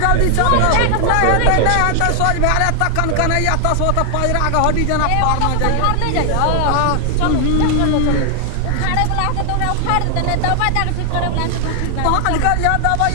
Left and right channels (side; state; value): both; different; correlation 0.00